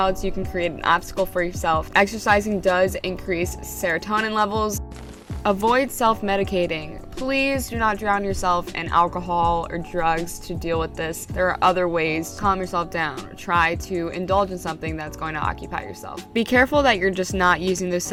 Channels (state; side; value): identical; both; correlation 1.00